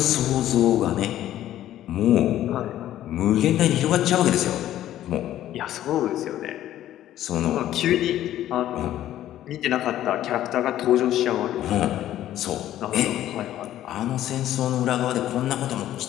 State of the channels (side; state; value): right; quieter; 12.8 dB